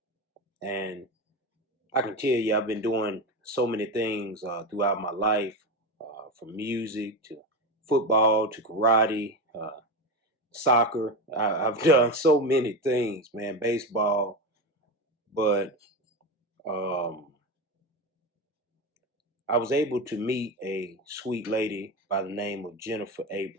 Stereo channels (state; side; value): normal; both; correlation 0.19